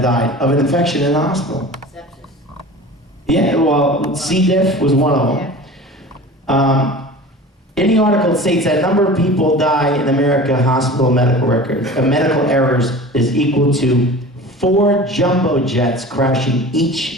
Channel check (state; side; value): normal; both; correlation 0.38